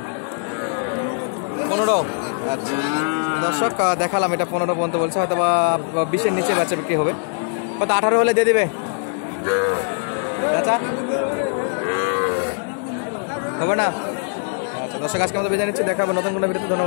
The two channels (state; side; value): silent; right; 59 dB below the other